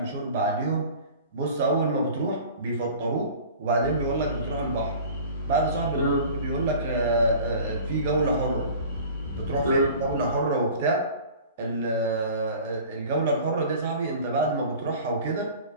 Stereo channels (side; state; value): both; inverted; correlation -0.43